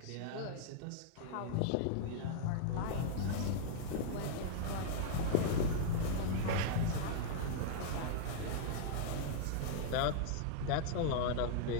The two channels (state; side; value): different; both; correlation -0.01